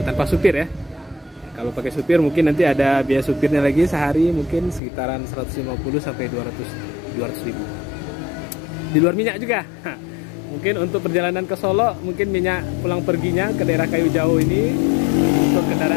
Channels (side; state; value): right; drops out; at 4.8 s